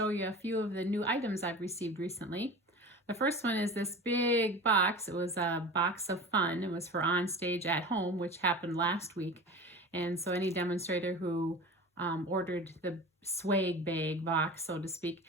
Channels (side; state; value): both; normal; correlation 0.34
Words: you a few of the new items I've received recently. The first one is this big box. It was a box of fun. It was for On Stage at Home, which happened last week. And so any demonstrator who ordered the swag bag box, so to speak,